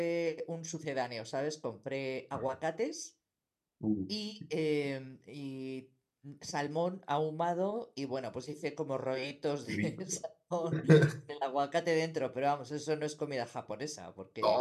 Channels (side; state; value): both; identical; correlation 1.00